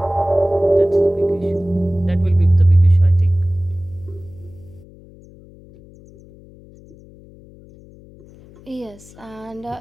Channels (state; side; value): noise; left; hum, 23 dB below the sound